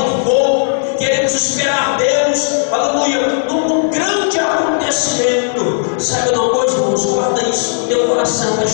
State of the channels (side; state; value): right; silent; 56 dB below the other